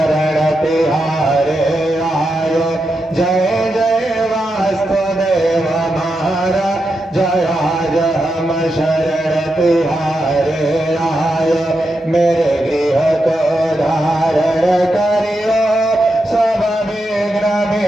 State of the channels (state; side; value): normal; both; correlation 0.86